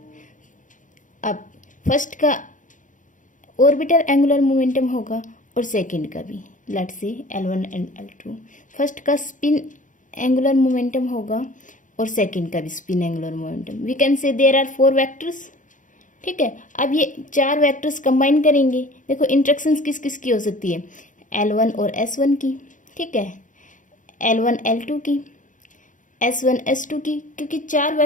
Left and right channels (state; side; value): late; right; 0.37 ms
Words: अब फर्स्ट का ऑर्बिटल एंगुलर मोमेंटम होगा और सेकंड का भी, let's see L1 and L2। First का स्पिन एंगुलर मोमेंटम होगा और सेकंड का भी spin angular momentum. We can say there are 4 vectors. ठीक है, अब ये 4 वेक्टर्स कंबाइन करेंगे। देखो इंटरेक्शंस किस किस की हो सकती है, L1 और S1 की। ठीक है, L1 L2 की, S1 S2 की, क्योंकि 4